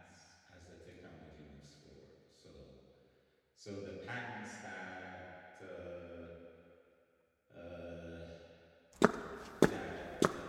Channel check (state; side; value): identical; both; correlation 1.00